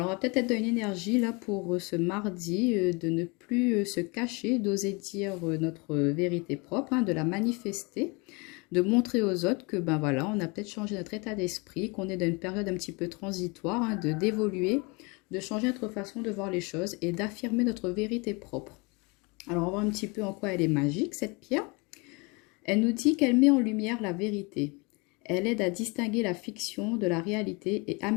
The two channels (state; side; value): quieter; right; 28.7 dB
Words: on va peut-être être dans une énergie là pour ce mardi de ne plus se cacher, d'oser dire notre vérité propre, de la manifester. De montrer aux autres que ben voilà, on a peut-être changé notre état d'esprit, qu'on est dans une période un petit peu transitoire, d'évoluer, de changer notre façon de voir les choses et d'affirmer notre vérité propre. Alors on va voir un petit peu en quoi elle est magique cette pierre. Elle nous dit qu'elle met en lumière la vérité. Elle aide à distinguer la fiction de la réalité et